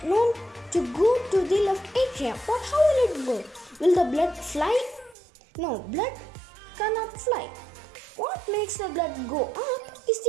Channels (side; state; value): left; drops out; at 5.2 s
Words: known to go to the left atrium. But how will it go? Will the blood fly? No, blood cannot fly. What makes the blood go up is